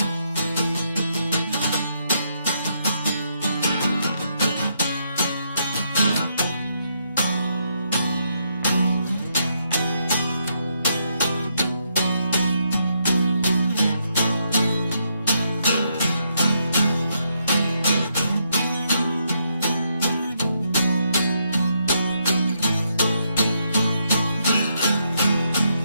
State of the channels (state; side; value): inverted; both; correlation -0.78